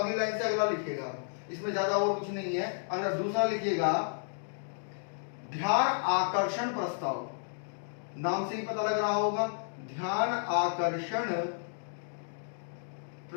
लाइन से अगला लिखिएगा, इसमें ज्यादा और कुछ नहीं है। अगर दूसरा लिखिएगा, ध्यान आकर्षण प्रस्ताव, नाम से ही पता लग रहा होगा, ध्यान आकर्षण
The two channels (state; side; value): silent; right; digital silence